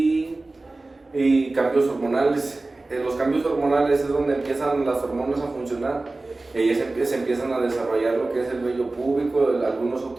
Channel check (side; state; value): left; quieter; 3.1 dB